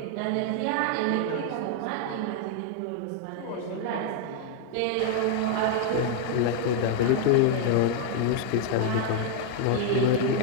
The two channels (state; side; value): different; both; correlation 0.00